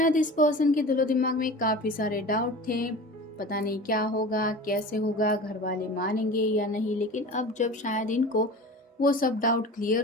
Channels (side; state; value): both; normal; correlation 0.36